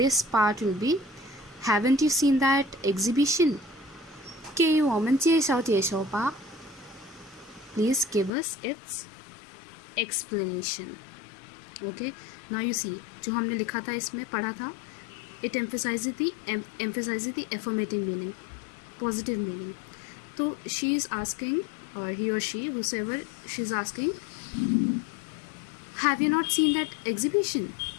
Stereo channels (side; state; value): right; drops out; at 8.3 s